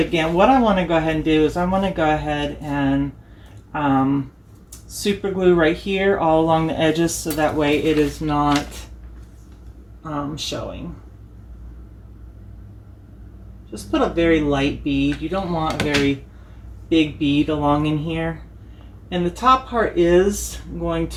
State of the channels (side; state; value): both; identical; correlation 1.00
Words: again. What I want to go ahead and do is I want to go ahead and super glue right here all along the edges, so that way it is not showing. Just put a very light bead. You don't want a very big bead along in here. And the top part is going